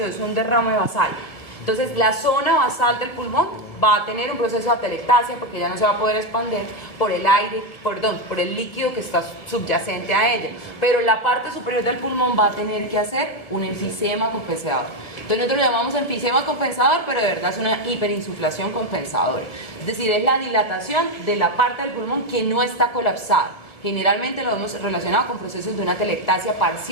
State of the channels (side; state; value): right; late; 1.6 ms